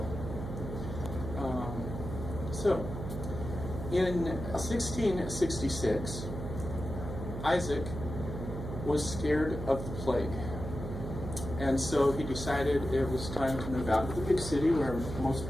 So, in 1666, Isaac was scared of the plague. And so he decided it was time to move out of the big city where most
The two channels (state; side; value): noise; right; hum, 7 dB below the sound